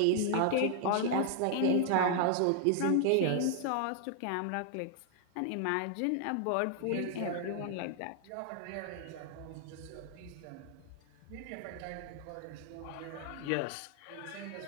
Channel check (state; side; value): different; both; correlation 0.00